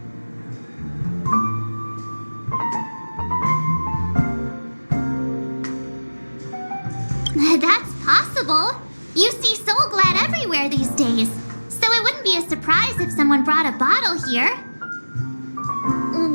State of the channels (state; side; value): inverted; both; correlation -1.00